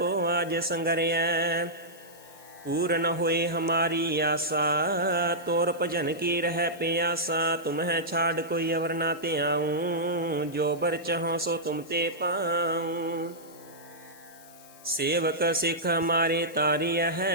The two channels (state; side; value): noise; left; hiss, 22 dB below the sound